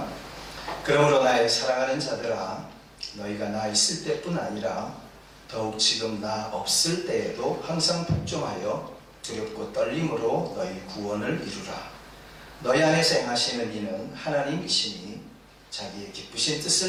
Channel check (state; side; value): identical; both; correlation 1.00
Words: 그러므로 나의 사랑하는 자들아, 너희가 나 있을 때뿐 아니라 더욱 지금 나 없을 때에도 항상 복종하여 두렵고 떨림으로 너희 구원을 이루라. 너희 안에서 행하시는 이는 하나님이시니 자기의 기쁘신